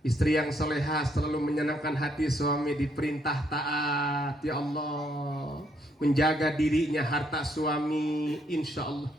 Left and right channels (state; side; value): normal; both; correlation 0.72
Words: istri yang soleha selalu menyenangkan hati suami, diperintah taat. Ya Allah, menjaga dirinya, harta suami. Insya Allah.